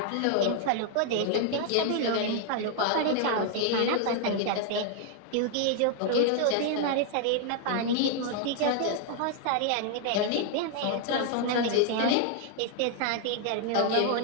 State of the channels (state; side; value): different; both; correlation 0.00